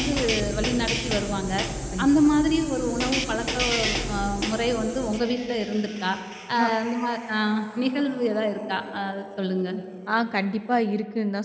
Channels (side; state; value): both; identical; correlation 1.00